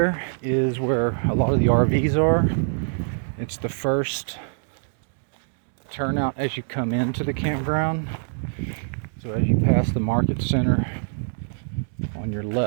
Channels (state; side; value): silent; left; digital silence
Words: is where a lot of the RVs are. It's the first turnout as you come into the campground. So as you pass the market center on your